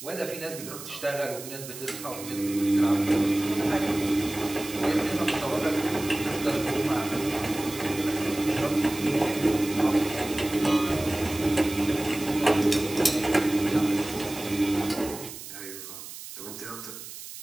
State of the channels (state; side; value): noise; right; hiss, 12 dB below the sound